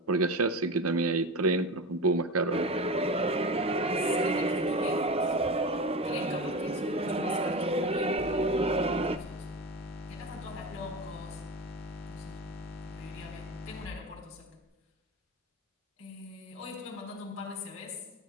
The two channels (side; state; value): both; normal; correlation 0.26